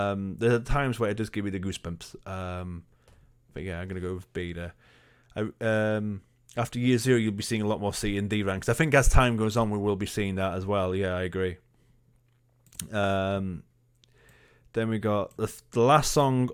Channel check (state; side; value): identical; both; correlation 1.00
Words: are times where it does give me the goosebumps. But yeah, I'm going to go with B there. After year 0, you'll be seeing a lot more C and D ranks. I think as time goes on, we will be seeing that as well. Yeah, I agree. Then we got the last song